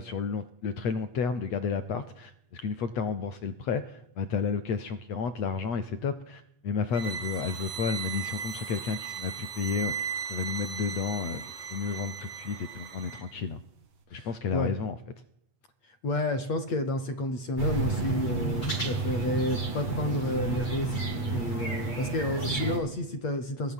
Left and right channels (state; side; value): late; right; 8.3 ms